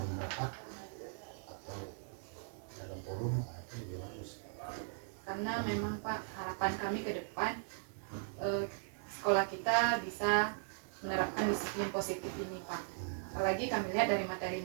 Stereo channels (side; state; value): left; silent; 52 dB below the other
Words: rapat atau dalam forum, itu juga bagus. Karena memang, Pak, harapan kami ke depan sekolah kita bisa menerapkan disiplin positif ini, Pak. Apalagi kami lihat dari